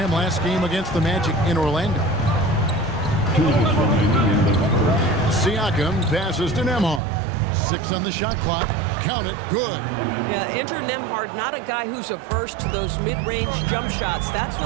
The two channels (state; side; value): drops out; left; at 7.0 s